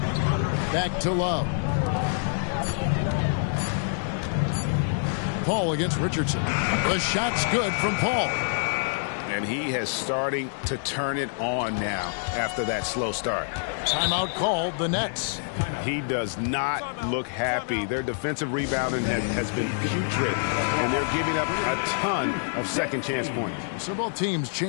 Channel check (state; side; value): silent; right; digital silence